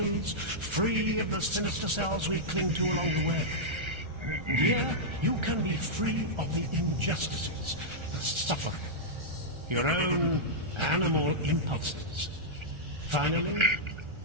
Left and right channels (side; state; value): left; late; 1.3 ms